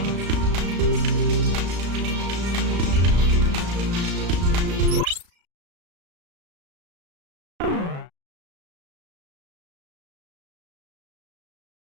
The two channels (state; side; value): late; left; 35 ms